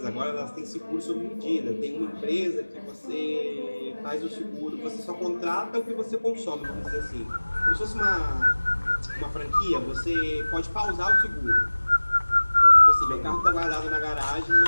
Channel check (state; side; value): inverted; both; correlation -1.00